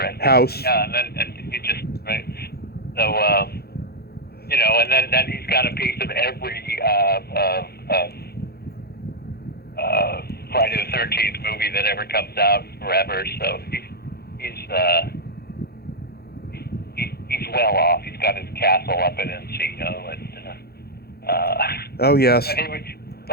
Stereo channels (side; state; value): right; late; 0.46 ms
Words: it. House. Yeah, and he just, right. So, and then he's got a piece of every Friday the 13th movie that ever comes out forever. So he's well off. He's got his castle up in Encino, and Oh yes.